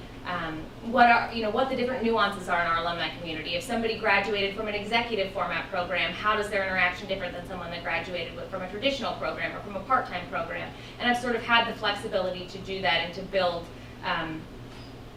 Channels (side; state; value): both; identical; correlation 1.00